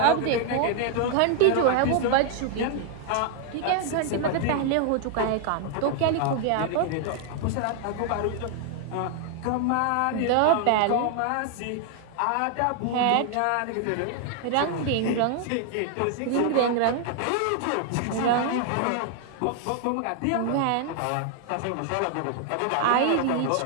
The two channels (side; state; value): both; different; correlation 0.00